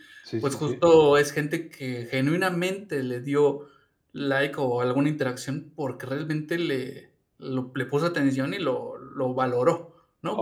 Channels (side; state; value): both; identical; correlation 1.00